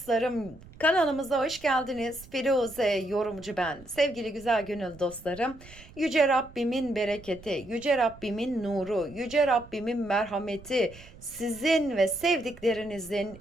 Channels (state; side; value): noise; right; rumble, 20 dB below the sound